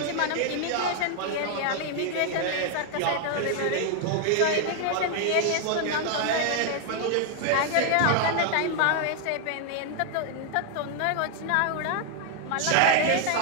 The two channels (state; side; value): different; both; correlation 0.00